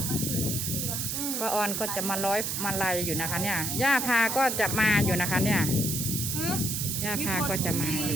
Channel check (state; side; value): noise; right; hiss, 1 dB below the sound